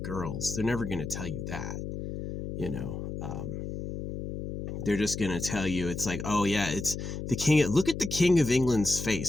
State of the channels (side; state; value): left; noise; hum, 6 dB below the sound